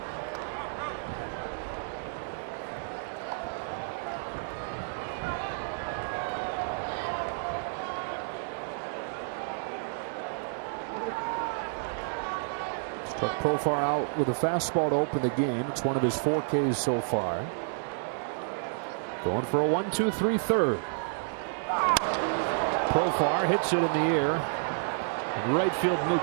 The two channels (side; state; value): left; silent; digital silence